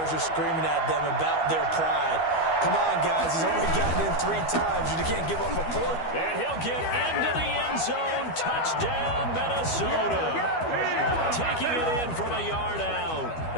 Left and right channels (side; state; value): right; late; 12 ms